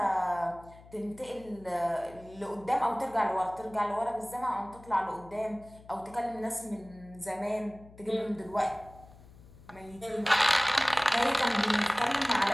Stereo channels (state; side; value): noise; left; hum, 21 dB below the sound